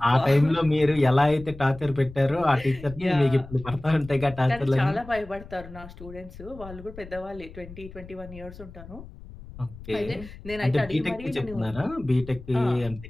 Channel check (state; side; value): noise; left; rumble, 16 dB below the sound